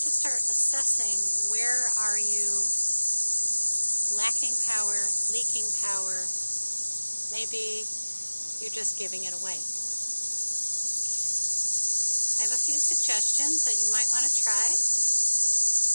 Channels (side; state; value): both; inverted; correlation -1.00